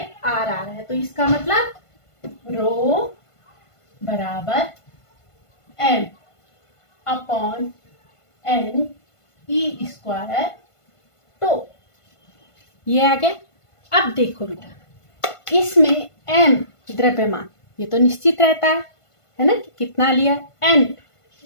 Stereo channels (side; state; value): right; late; 1.5 ms